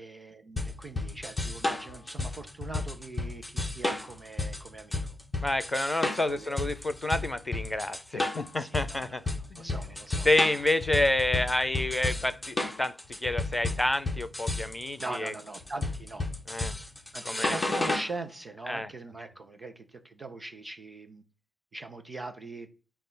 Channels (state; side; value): normal; both; correlation 0.88